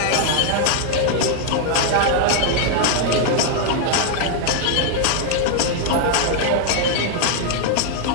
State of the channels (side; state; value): both; different; correlation 0.00